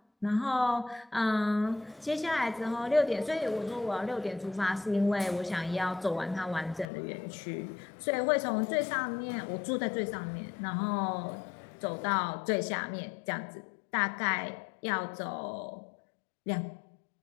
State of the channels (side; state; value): right; drops out; at 6.9 s